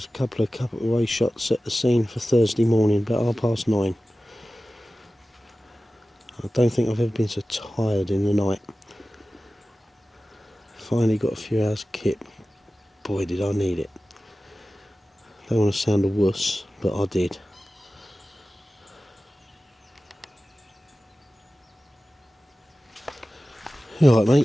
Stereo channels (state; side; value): normal; both; correlation 0.96